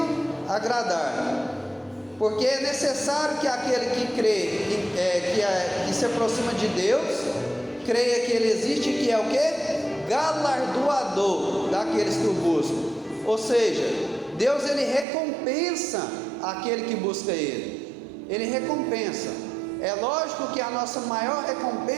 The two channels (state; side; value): drops out; left; at 15.1 s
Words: agradar, porque é necessário que aquele que crê, que se aproxima de Deus, creia que Ele existe, que é o que? Galardoador daqueles que o buscam. Ou seja, Deus, Ele recompensa aquele que busca Ele. Ele recompensa. É lógico que a nossa maior